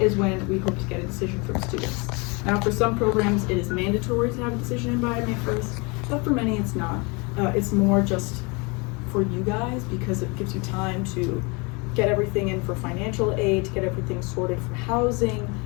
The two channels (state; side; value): quieter; right; 29.2 dB